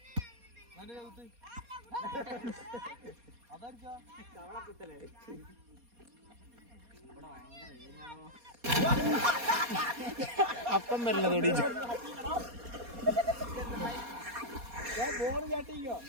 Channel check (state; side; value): late; left; 4.2 ms